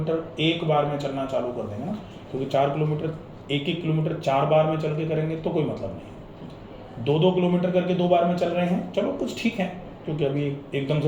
एक बार में चलना चालू कर देंगे ना, क्योंकि 4 किलोमीटर 1-1 किलोमीटर 4 बार में चल के करेंगे तो कोई मतलब नहीं है। 2-2 किलोमीटर करके 2 बार में चल रहे हैं, चलो कुछ ठीक है, क्योंकि अभी एकदम से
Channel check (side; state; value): both; identical; correlation 1.00